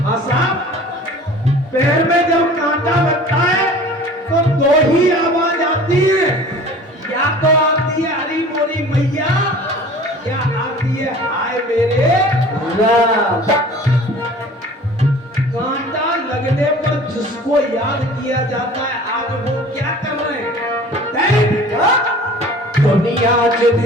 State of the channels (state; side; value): normal; both; correlation 0.45